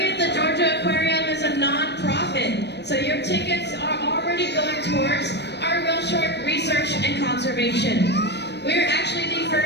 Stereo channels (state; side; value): late; right; 0.50 ms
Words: the Georgia Aquarium is a non-profit, so your tickets are already going towards our whale shark research and conservation. We're actually the